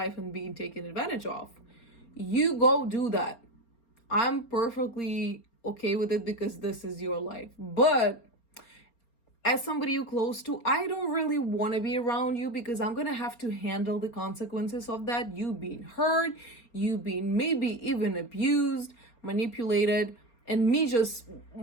and being taken advantage of, you go do that. I'm perfectly okay with it because this is your life. But as somebody you're close to, I don't really want to be around you, because I'm going to have to handle the consequences of that. You being hurt, you being maybe even abused, manipulated, and me just,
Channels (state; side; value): late; right; 4.3 ms